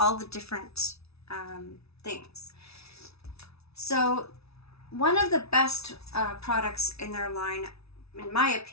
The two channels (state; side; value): late; right; 0.79 ms